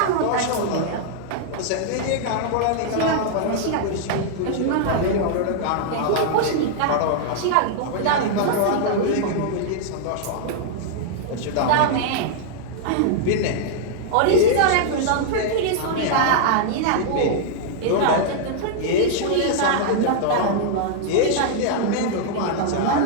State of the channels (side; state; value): both; different; correlation -0.01